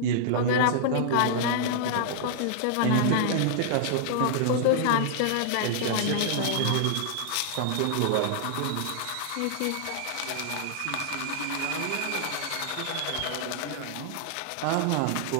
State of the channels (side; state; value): both; different; correlation -0.01